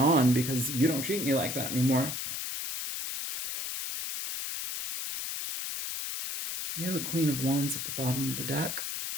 because you don't treat me like that anymore. You're the Queen of Wands at the bottom of the deck.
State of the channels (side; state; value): left; noise; hiss, 4 dB below the sound